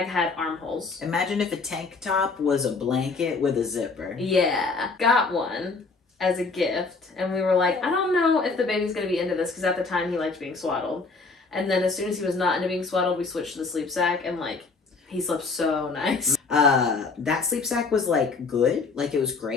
armholes. Imagine if a tank top was a blanket with a zipper. Yeah. Got one as a gift. And we were like, I don't know if the baby's going to be into this, because at the time he liked being swaddled. And then as soon as he was not into being swaddled, we switched to the sleep sack, and like, he slept so nice. That sleep sack was like good. Like it was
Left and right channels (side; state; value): right; quieter; 4.2 dB